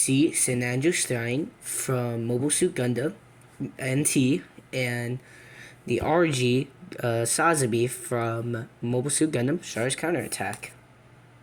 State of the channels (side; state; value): both; identical; correlation 1.00